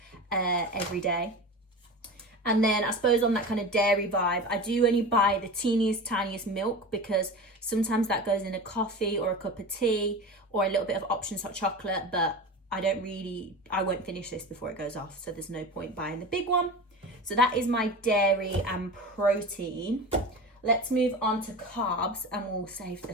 every day. And then I suppose on that kind of dairy vibe, I do only buy the teeniest, tiniest milk because sometimes that goes in a coffee or a cup of tea or a little bit of Options hot chocolate, but I won't finish this before it goes off. So there's no point buying the big one. So that is my dairy and protein. Let's move on to carbs and we'll save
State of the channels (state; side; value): normal; both; correlation 0.31